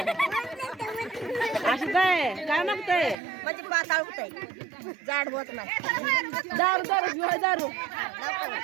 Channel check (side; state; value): left; drops out; at 3.2 s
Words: असं काय मागताय म्हणजे पाताळ होतंय जाड होत नाही. दारू दारू बिवा दारू